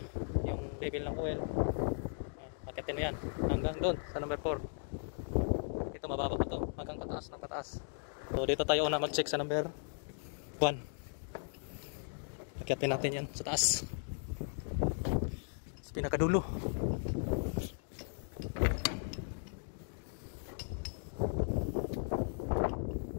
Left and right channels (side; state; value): right; silent; digital silence